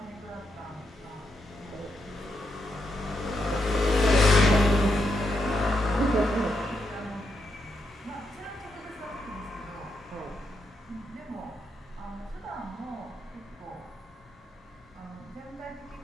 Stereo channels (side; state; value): both; normal; correlation 0.81